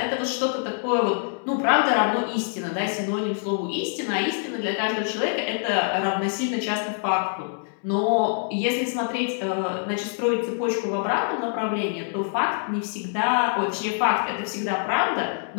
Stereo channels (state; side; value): silent; right; 62 dB below the other